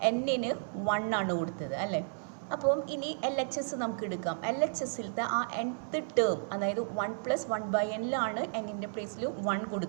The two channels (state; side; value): silent; left; digital silence